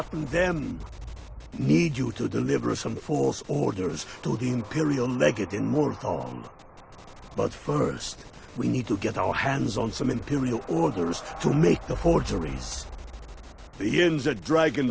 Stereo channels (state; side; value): identical; both; correlation 1.00